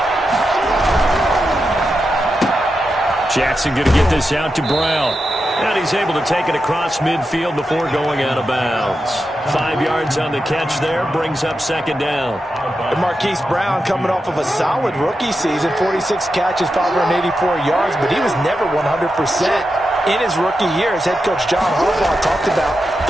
Jackson going to get this out to Brown. And he's able to take it across midfield before going out of bounds. 5 yards on the catch there, brings up second down. And Marquise Brown coming off of a solid rookie season, 46 catches, 584 yards, but he was never 100%. In his rookie year, as head coach John Harbaugh talked about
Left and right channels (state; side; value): normal; both; correlation 0.88